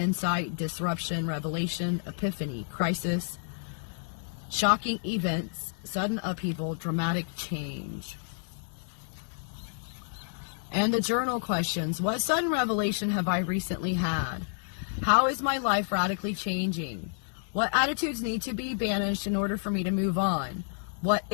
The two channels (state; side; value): silent; right; 58 dB below the other